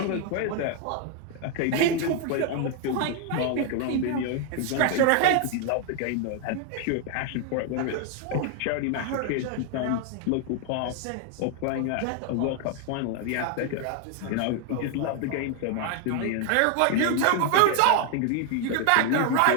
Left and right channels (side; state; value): both; different; correlation 0.00